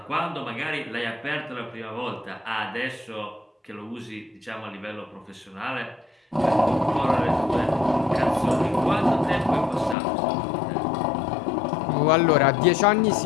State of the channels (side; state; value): right; drops out; at 10.0 s